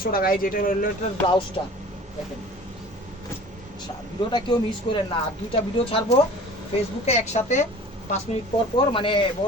টাকা। এই যেটা রিলেটেড ব্লাউজটা দেখেন। ভিডিওটা কেউ মিস করেন না। আর দুইটা ভিডিও ছাড়বো ফেসবুকে একসাথে 5 মিনিট পর পর, মানে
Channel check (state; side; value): normal; both; correlation 0.44